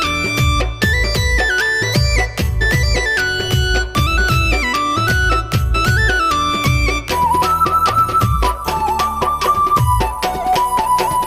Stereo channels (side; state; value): both; identical; correlation 1.00